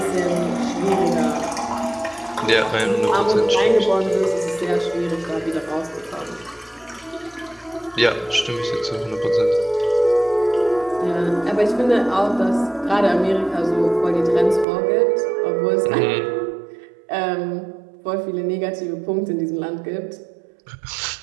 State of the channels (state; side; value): drops out; left; at 14.7 s